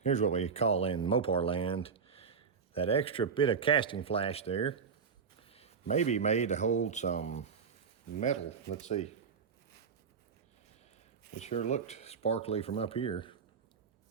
Here's what we call in Mopar land, that extra bit of casting flash there may be made to hold some metal. Let's see. It sure looked sparkly from up here.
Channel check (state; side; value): quieter; left; 6.0 dB